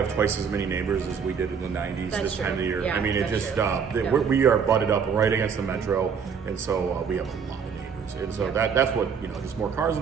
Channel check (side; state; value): left; quieter; 6.5 dB